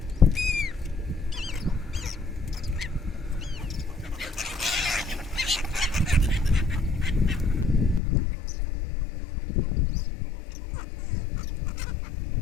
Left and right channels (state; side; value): drops out; right; at 8.0 s